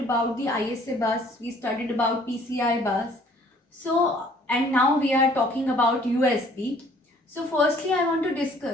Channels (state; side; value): normal; both; correlation 0.58